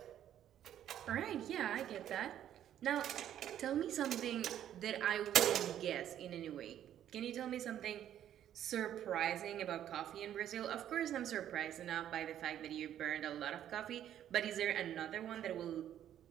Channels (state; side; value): quieter; left; 10.9 dB